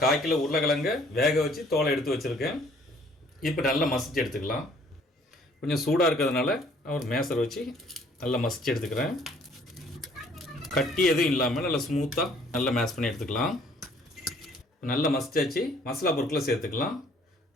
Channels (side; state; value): both; normal; correlation 0.59